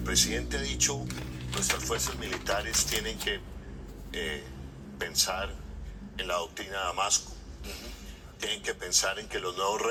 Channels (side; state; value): both; identical; correlation 1.00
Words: presidente ha dicho, nuestras fuerzas militares tienen que pensar en la doctrina de Damasco, tienen que pensar en que los nuevos